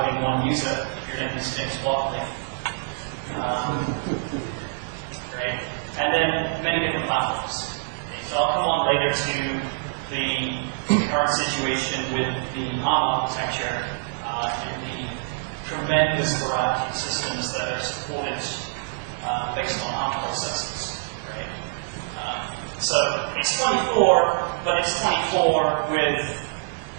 only one user if you're making sticks locally. Great. And then many different platforms. Okay, so I'll come on later to the current situation with the ARM architecture and the tremendous variety of systems that are supported based on ARM processors. Right? So it's 24, but it's 24 with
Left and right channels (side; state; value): left; silent; 60 dB below the other